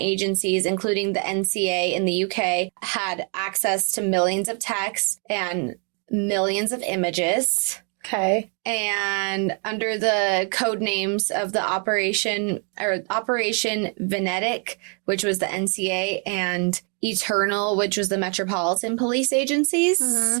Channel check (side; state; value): left; quieter; 39.3 dB